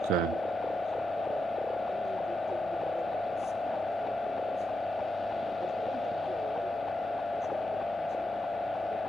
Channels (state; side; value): normal; both; correlation 0.87